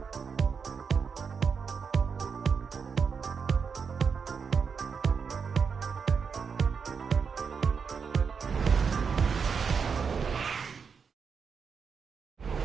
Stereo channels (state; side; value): quieter; left; 5.9 dB